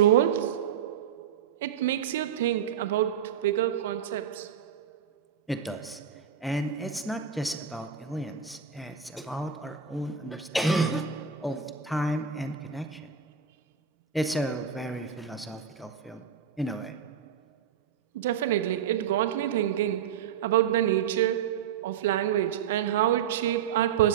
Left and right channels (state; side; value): quieter; left; 7.8 dB